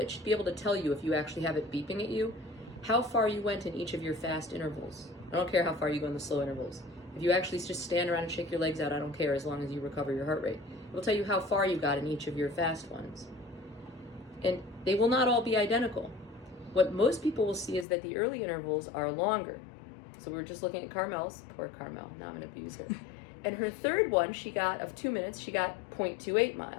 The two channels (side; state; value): right; drops out; at 17.9 s